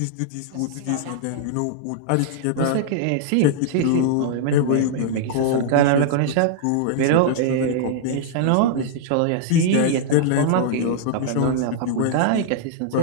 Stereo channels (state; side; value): different; both; correlation -0.01